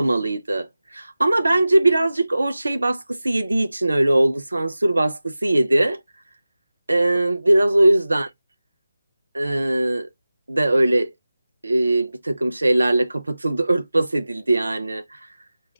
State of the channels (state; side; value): inverted; both; correlation -0.96